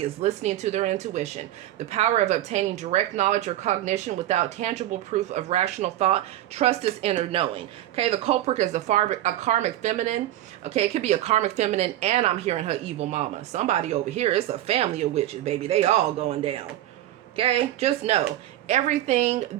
is listening to their intuition. The power of obtaining direct knowledge or cognition without tangible proof of rational thought. Trust is inner knowing. Okay, the culprit is a karmic feminine. Okay, it could be a karmic feminine, and I'm hearing her evil mama. Somebody over here, it's a family of witches, baby. They all going down. Okay, just know, everything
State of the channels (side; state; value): left; quieter; 13.7 dB